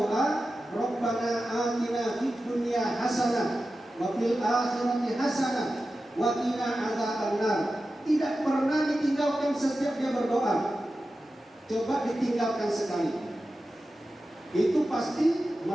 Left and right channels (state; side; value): normal; both; correlation 0.93